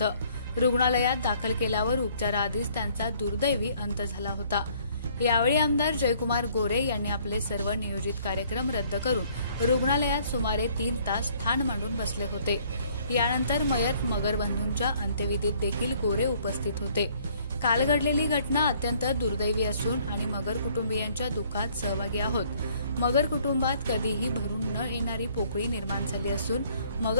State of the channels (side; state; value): both; inverted; correlation -0.61